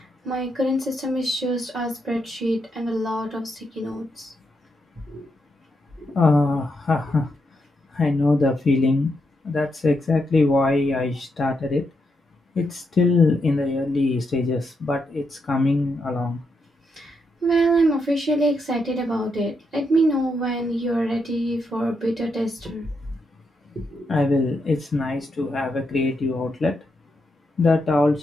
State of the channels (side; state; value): both; normal; correlation 0.82